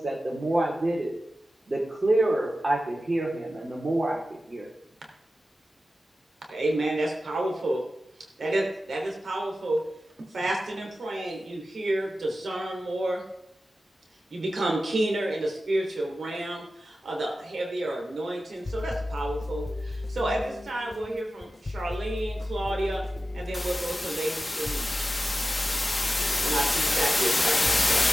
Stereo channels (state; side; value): normal; both; correlation 0.94